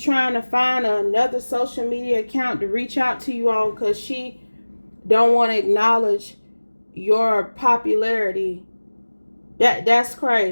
to find another social media account to reach out to you on because she don't want to acknowledge your popularity. That's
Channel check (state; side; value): inverted; both; correlation -1.00